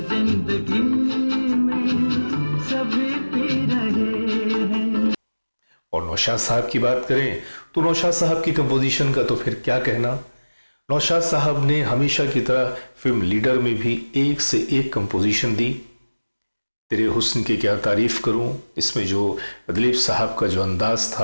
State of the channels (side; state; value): both; inverted; correlation -1.00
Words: जिंदगी में सभी पी रहे हैं। और नौशाद साहब की बात करें तो नौशाद साहब की कंपोजिशन का तो फिर क्या कहना। नौशाद साहब ने हमेशा की तरह फिल्म लीडर में भी एक से एक कंपोजिशन दी। तेरे हुस्न की क्या तारीफ करूं, इसमें जो दिलीप साहब का जो अंदाज